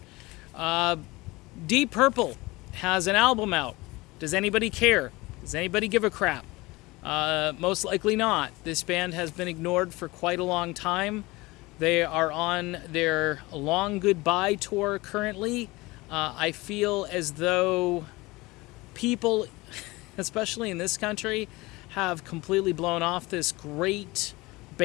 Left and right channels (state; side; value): quieter; right; 22.0 dB